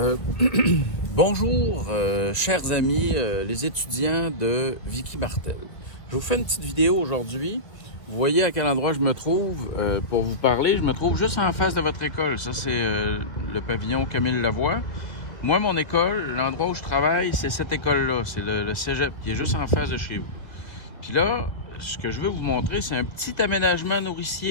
Bonjour, chers amis, les étudiants de Vicky Martel. Je vous fais une petite vidéo aujourd'hui. Vous voyez à quel endroit je me trouve pour vous parler. Je me trouve juste en face de votre école. Ça, c'est le pavillon Camille Lavoie. Moi, mon école, l'endroit où je travaille, c'est cette école-là. C'est le cégep qui est juste en face de chez vous. Puis là, ce que je veux vous montrer, c'est un petit aménagement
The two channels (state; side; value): late; right; 1.5 ms